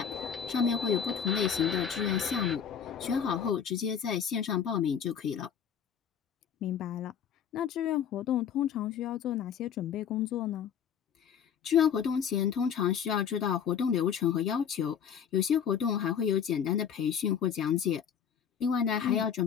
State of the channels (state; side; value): quieter; right; 8.0 dB